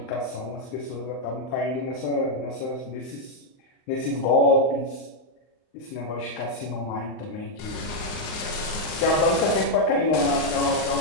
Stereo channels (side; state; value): right; late; 38 ms